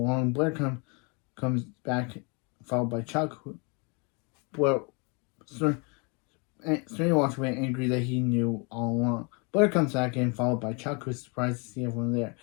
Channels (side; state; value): right; quieter; 32.7 dB